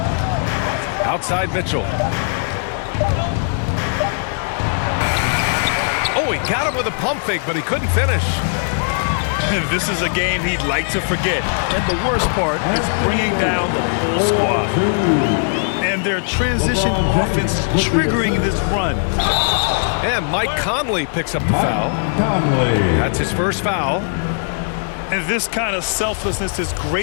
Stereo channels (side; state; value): right; silent; digital silence